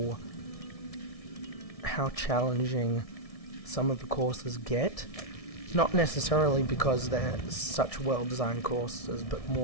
challenging some of the courses get, not necessarily because they're such well-designed courses, but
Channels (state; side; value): late; right; 1.6 ms